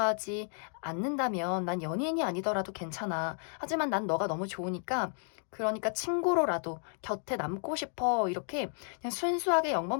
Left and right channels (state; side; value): silent; right; 56 dB below the other